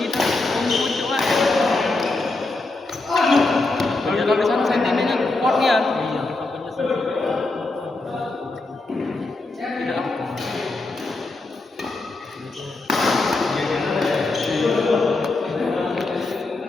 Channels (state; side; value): quieter; right; 3.2 dB